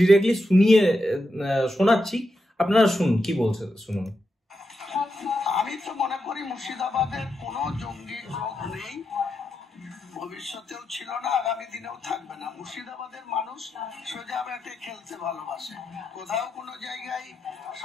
শোনাচ্ছি, আপনারা শুনুন কি বলছে, শুনুন। আমি তো মনে করি মুর্শিদাবাদের কোনো জঙ্গি গ্রুপ নেই, ভবিষ্যতেও ছিল না, আগামী দিনেও থাকবে না। মুর্শিদাবাদের মানুষ সোজা ব্যাটে খেলতে ভালোবাসে। কোথাও কোনো জায়গায়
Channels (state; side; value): normal; both; correlation 0.86